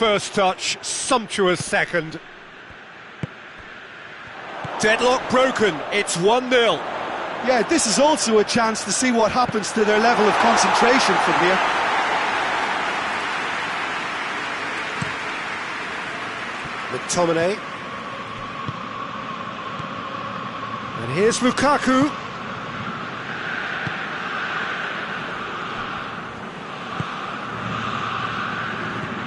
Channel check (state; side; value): identical; both; correlation 1.00